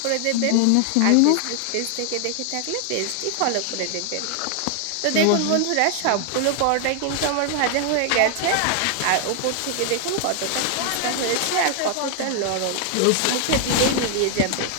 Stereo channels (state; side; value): different; both; correlation 0.00